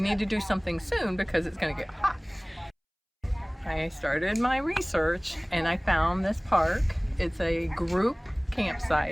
need to do something soon because it's going to get hot. I started my research and I found this park. It's a group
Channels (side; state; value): both; identical; correlation 1.00